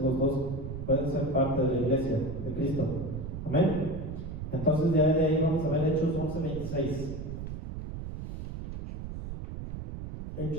dos pueden ser parte de la iglesia de Cristo. Amén. Entonces, de ahí vamos a ver Hechos 11:26.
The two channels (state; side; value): noise; right; rumble, 7 dB below the sound